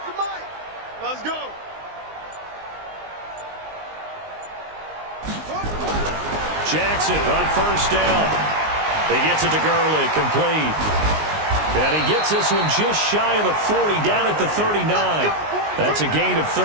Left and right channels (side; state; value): left; late; 19 ms